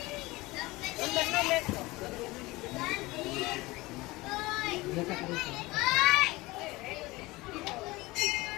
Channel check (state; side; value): quieter; right; 21.2 dB